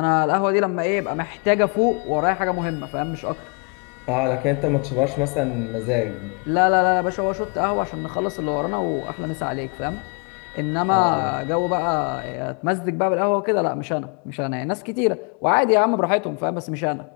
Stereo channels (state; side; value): quieter; right; 35.9 dB